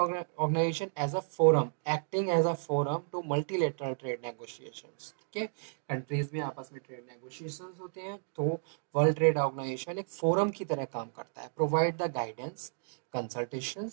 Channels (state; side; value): silent; left; digital silence